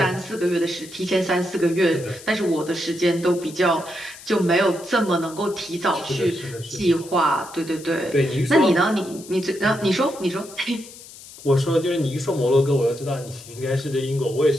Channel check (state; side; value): noise; left; hiss, 17 dB below the sound